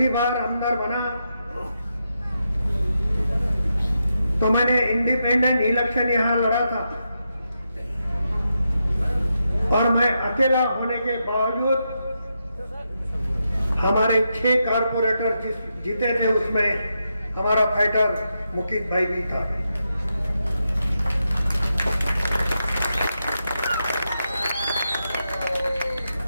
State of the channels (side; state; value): both; inverted; correlation -0.85